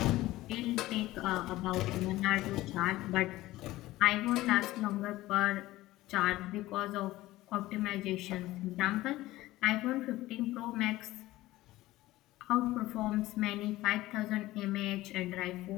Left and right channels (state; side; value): quieter; right; 17.1 dB